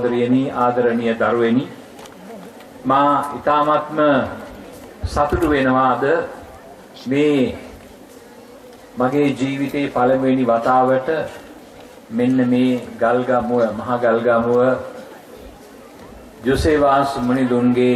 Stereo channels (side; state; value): both; identical; correlation 1.00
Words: ආදරණීය දරුවෙනි මා ඊ타ත්ම සතුටු වෙනවාද මේ මගේ ජීවිතේ පළමුවෙනි වතාවට මෙන්න මේ ගල්ගමුව මහා ගල්ගමුව ජෝසේවාස්